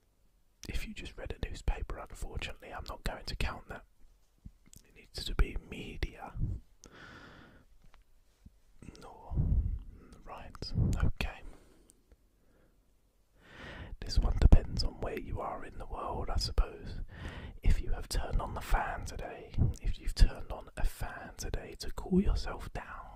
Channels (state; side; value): identical; both; correlation 1.00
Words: If you just read a newspaper, unfortunately, I'm not going to count that. It needs to be media. No. Right, okay. This one depends on where you are in the world, I suppose. If you have turned on the fan today, if you've turned on a fan today to cool yourself